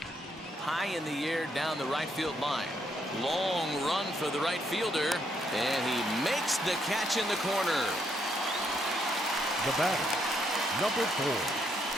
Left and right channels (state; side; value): normal; both; correlation 0.75